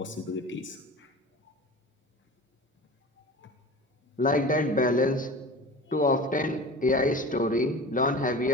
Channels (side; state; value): both; normal; correlation 0.36